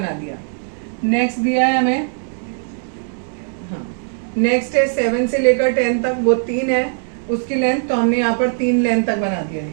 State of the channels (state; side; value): silent; left; 65 dB below the other